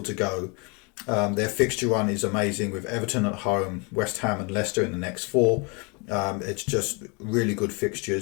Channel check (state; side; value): quieter; right; 31.6 dB